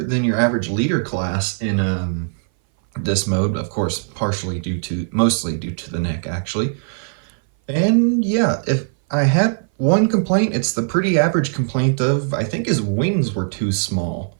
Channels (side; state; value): left; silent; 59 dB below the other